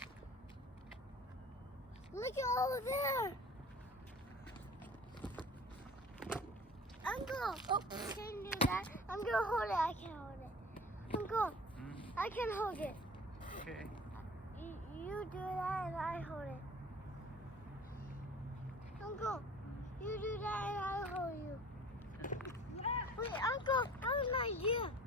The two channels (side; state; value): both; normal; correlation 0.44